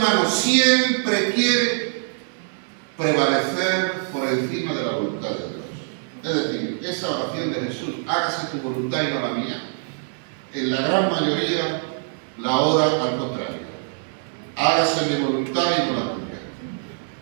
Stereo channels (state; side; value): silent; left; 63 dB below the other